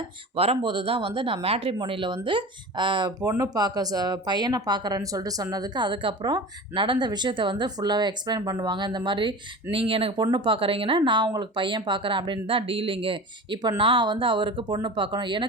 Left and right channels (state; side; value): normal; both; correlation 0.33